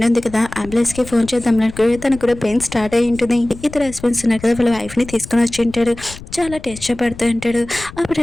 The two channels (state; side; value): noise; left; rumble, 16 dB below the sound